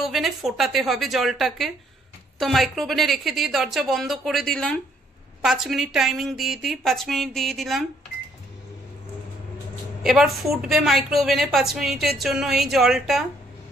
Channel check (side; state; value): both; normal; correlation 0.67